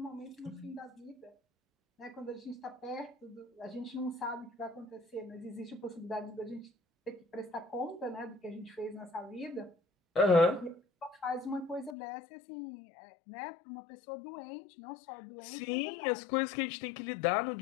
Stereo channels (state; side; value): drops out; right; at 12.0 s